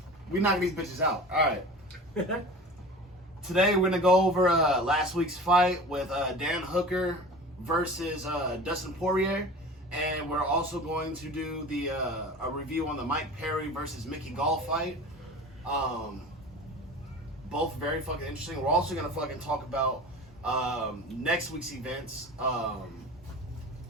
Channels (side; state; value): both; normal; correlation 0.37